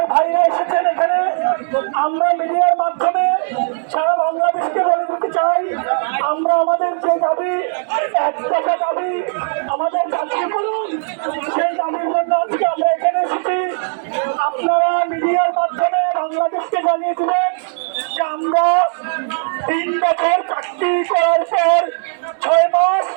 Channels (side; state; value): left; silent; 67 dB below the other